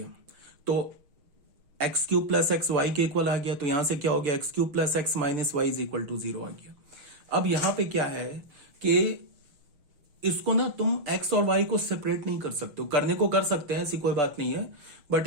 तो x cube plus x y के इक्वल आ गया, तो यहां से क्या हो गया, x cube plus x minus y is equal to 0 आ गया। अब यहां पे क्या है कि इसको ना तुम x और y को सेपरेट नहीं कर सकते हो, करने को कर सकते हैं, ऐसी कोई बात नहीं है, बट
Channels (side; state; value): left; late; 6.4 ms